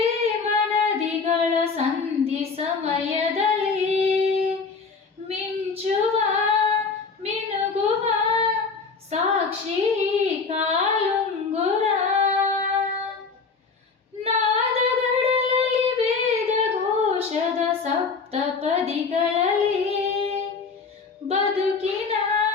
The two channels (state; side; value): quieter; right; 4.8 dB